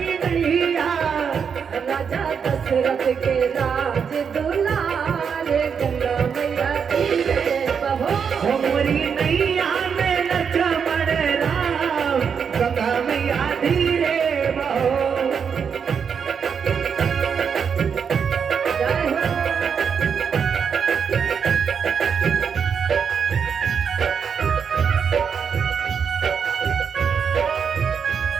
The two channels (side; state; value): left; quieter; 6.7 dB